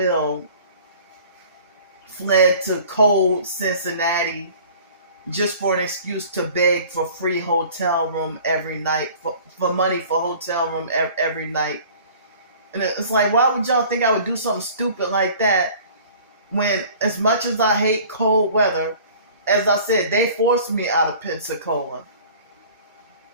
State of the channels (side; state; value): both; inverted; correlation -0.47